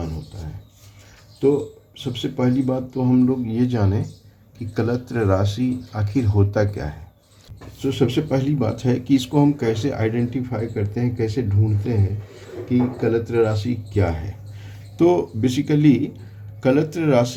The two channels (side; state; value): both; identical; correlation 1.00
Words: होता है। तो सबसे पहली बात तो हम लोग ये जानें कि कलत्र राशि आखिर होता क्या है। तो सबसे पहली बात है कि इसको हम कैसे आइडेंटिफाई करते हैं, कैसे ढूंढते हैं कि कलत्र राशि क्या है। तो बेसिकली कलत्र